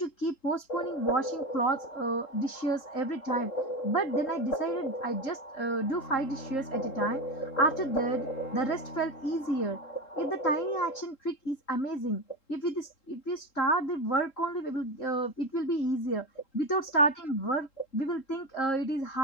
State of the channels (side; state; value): right; late; 3.7 ms